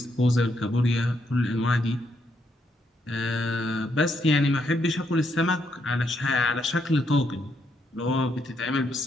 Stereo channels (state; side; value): normal; both; correlation 0.77